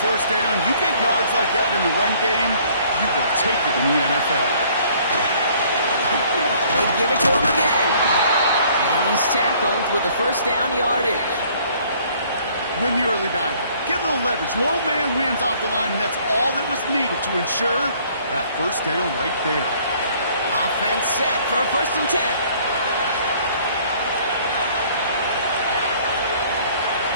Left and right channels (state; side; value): inverted; both; correlation -0.58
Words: first down. You get yards like that in the run game, you will take it in the NFL. They give it to him again. And he's tackled with a first down yardage. Win the early battle. Get a little leverage. Low man wins off the line, and that's all that was needed to ensure that first down right there. Offense set for a first and 10.